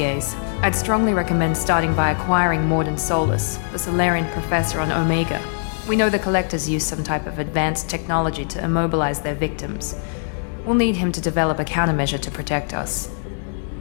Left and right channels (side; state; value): right; silent; digital silence